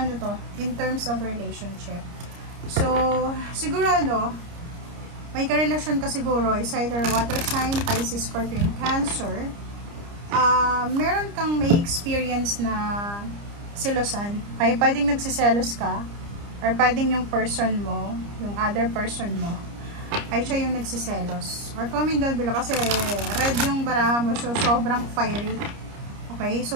to, in terms of relationship. So, siguro may karelasyon ka siguro, is either water sign, Pisces, Scorpion, Cancer. Meron kang may experience na selosan. Okay, pwedeng nagsiselos ka, or pwedeng yung person mo, yung other person mo, ay siya yung nagsiselos. Or comment down below kasi red yung baraha mo, so sobrang fiery. Okay,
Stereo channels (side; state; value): left; late; 30 ms